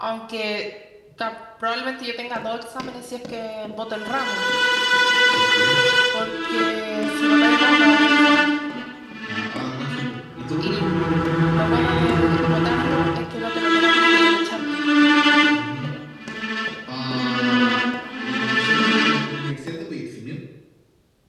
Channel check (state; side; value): identical; both; correlation 1.00